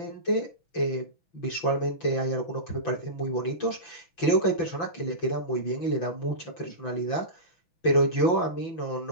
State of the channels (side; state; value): right; late; 5.9 ms